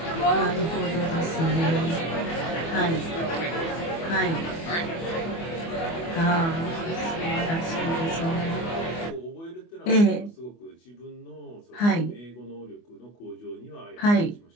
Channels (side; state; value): right; late; 24 ms